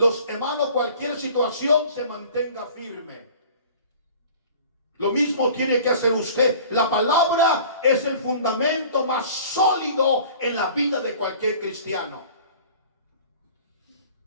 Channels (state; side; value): inverted; both; correlation -0.46